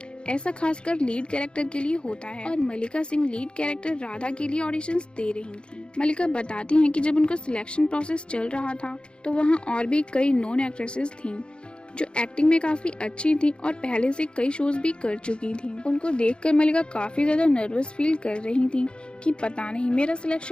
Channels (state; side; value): late; right; 0.054 ms